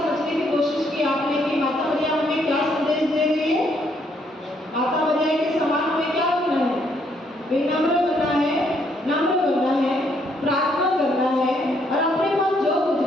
की कोशिश की आपने कि माता मरियम हमें क्या संदेश दे रही है? माता मरियम के समान हमें क्या बनना है? विनम्र बनना है, नम्र बनना है, प्रार्थना करना है और अपने पास जो कुछ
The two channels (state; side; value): normal; both; correlation 0.71